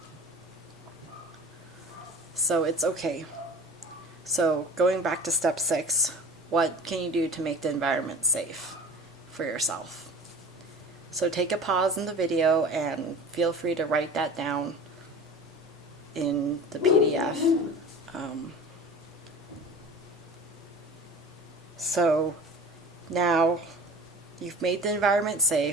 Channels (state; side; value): normal; both; correlation 0.38